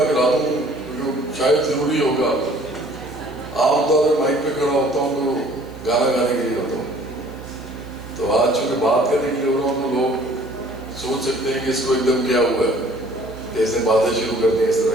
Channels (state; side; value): noise; left; hiss, 29 dB below the sound